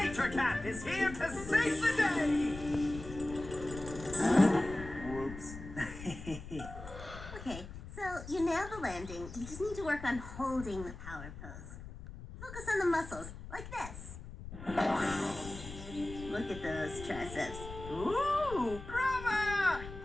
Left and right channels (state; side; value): noise; left; rumble, 12 dB below the sound